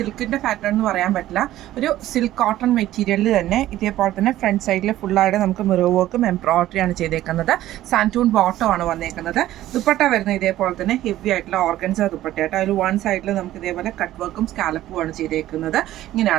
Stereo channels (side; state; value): left; quieter; 14.2 dB